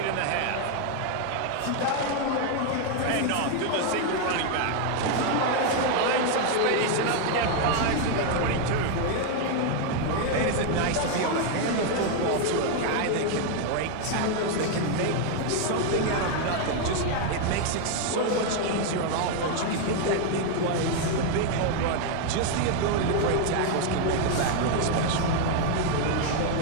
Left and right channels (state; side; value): different; both; correlation 0.01